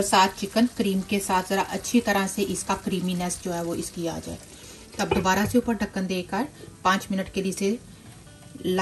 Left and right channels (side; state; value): both; identical; correlation 1.00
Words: साथ चिकन क्रीम के साथ ज़रा अच्छी तरह से इसका क्रीमीनेस जो है वो इसकी आ जाए। तब दोबारा से ऊपर ढक्कन देकर 5 मिनट के लिए इसे